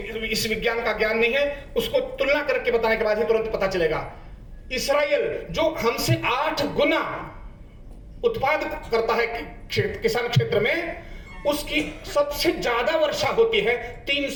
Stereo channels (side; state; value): both; identical; correlation 1.00